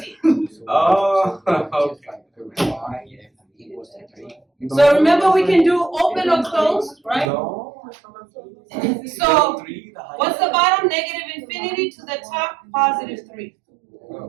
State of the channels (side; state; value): left; drops out; at 7.3 s